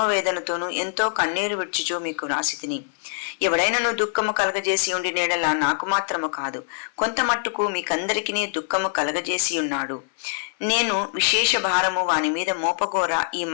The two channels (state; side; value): silent; right; 61 dB below the other